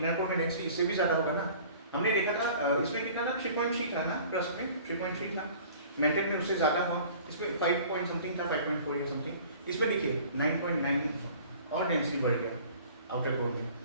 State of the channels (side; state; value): both; inverted; correlation -0.48